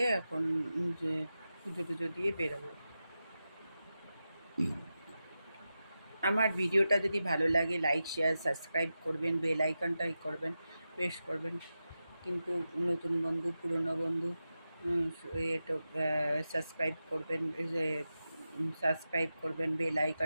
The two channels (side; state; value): both; inverted; correlation -0.91